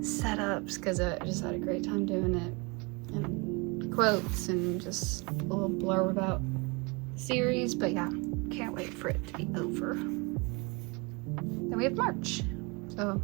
setups because I just had a great time doing it, and quotes and just a little blurb about the series. But yeah, can't wait for it to be over. Then we have March. So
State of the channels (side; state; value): left; quieter; 28.8 dB